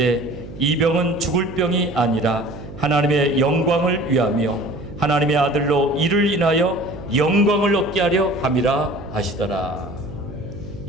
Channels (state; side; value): noise; right; hum, 14 dB below the sound